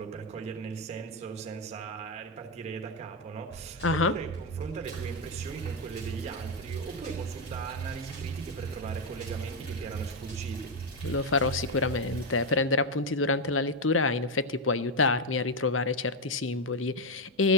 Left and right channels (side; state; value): both; normal; correlation 0.04